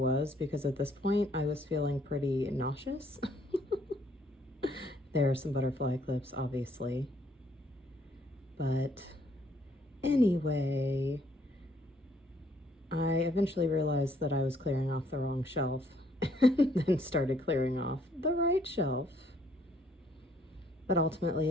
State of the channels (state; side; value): normal; both; correlation 0.66